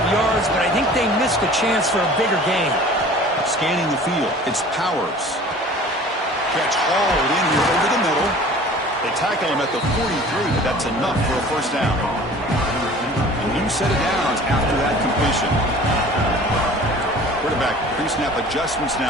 yards, but I think they missed a chance for a bigger gain. Scanning the field, it's Powers. Catch hauled in here over the middle. They tackle him at the 43, but that's enough for a first down. A new set of downs after that completion. Quarterback pre-snap adjustments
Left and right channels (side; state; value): both; normal; correlation 0.45